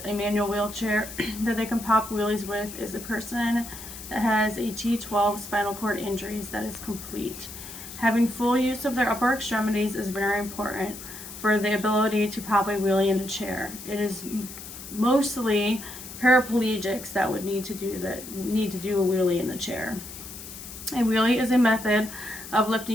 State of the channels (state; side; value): noise; left; hiss, 12 dB below the sound